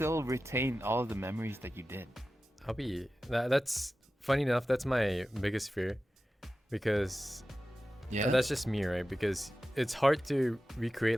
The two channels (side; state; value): both; normal; correlation 0.94